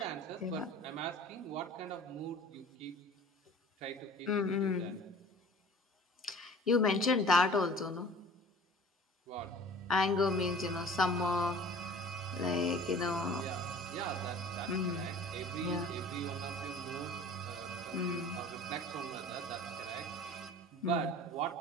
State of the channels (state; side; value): normal; both; correlation 0.45